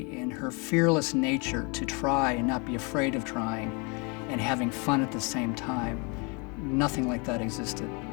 and her fearless nature to try and not be afraid of trying and having fun at the same time. Nothing like that existed.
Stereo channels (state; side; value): quieter; right; 31.9 dB